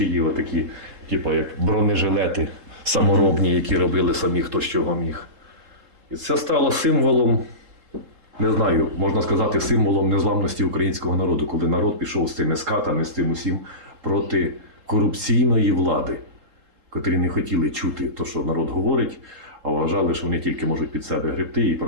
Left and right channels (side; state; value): left; late; 3.7 ms